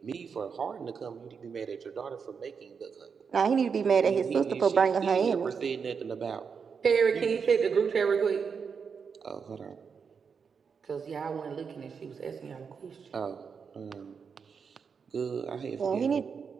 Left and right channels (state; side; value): quieter; left; 6.1 dB